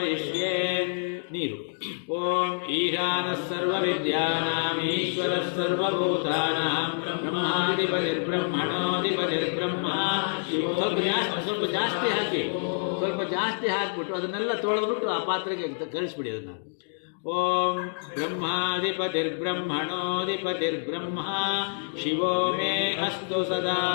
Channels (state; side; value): silent; right; digital silence